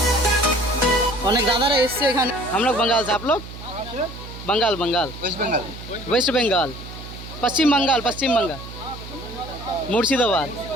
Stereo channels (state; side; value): noise; right; hum, 13 dB below the sound